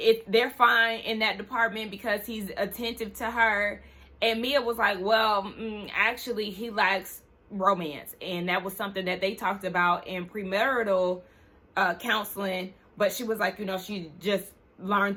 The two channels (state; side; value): identical; both; correlation 1.00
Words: they're fine in that department because he's attentive to her. And Mia was like, well, actually he lacks romance, and that was something that they talked about in premarital counseling, but she was like, she just